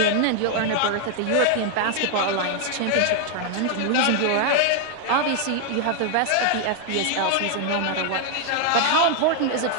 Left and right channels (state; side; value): different; both; correlation 0.00